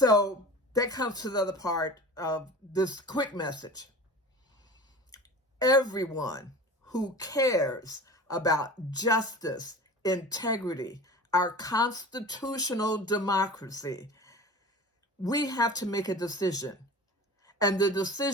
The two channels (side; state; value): both; normal; correlation 0.37